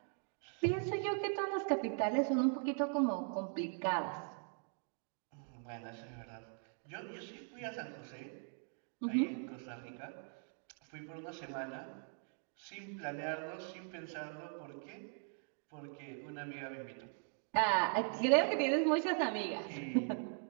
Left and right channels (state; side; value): silent; left; 51 dB below the other